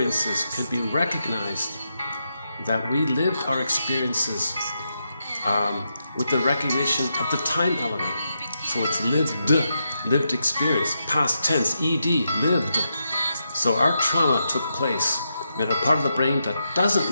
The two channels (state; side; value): inverted; both; correlation -0.84